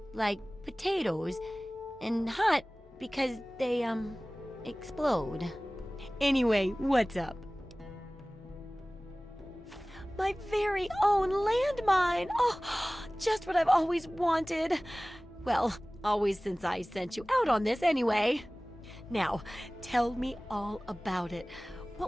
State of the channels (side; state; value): both; normal; correlation 0.98